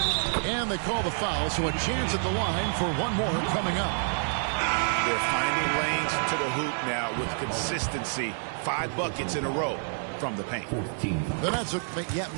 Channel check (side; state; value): left; silent; 59 dB below the other